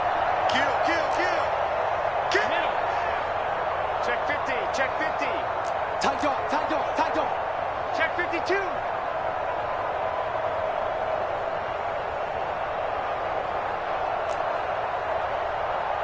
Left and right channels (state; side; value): identical; both; correlation 1.00